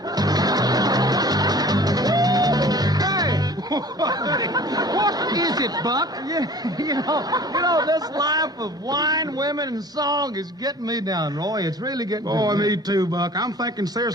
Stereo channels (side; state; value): both; normal; correlation 0.46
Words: What is it, Buck? You know, this life of wine, women, and song is getting me down, Roy. It's really getting Boy, me too, Buck. I'm thinking